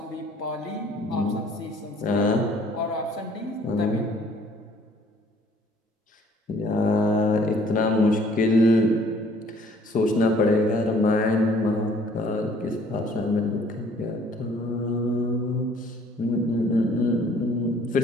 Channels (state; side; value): normal; both; correlation 0.58